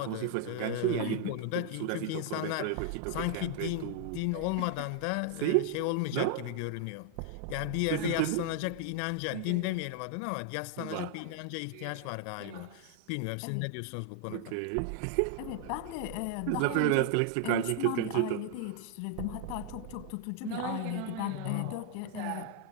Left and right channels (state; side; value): different; both; correlation 0.00